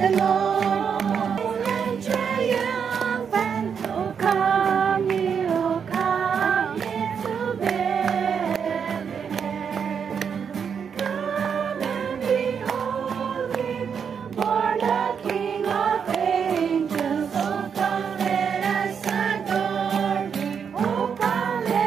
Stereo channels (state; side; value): quieter; left; 6.9 dB